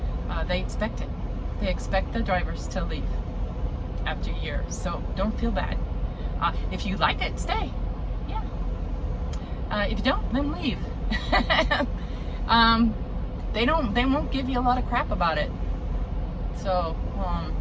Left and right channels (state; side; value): identical; both; correlation 1.00